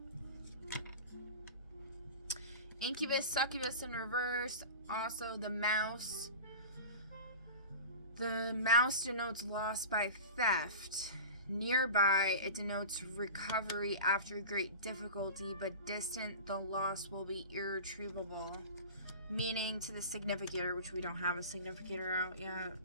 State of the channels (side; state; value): both; inverted; correlation -0.33